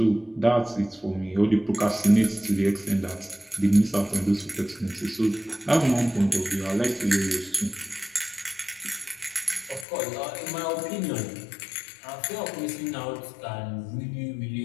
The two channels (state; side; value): drops out; right; at 9.9 s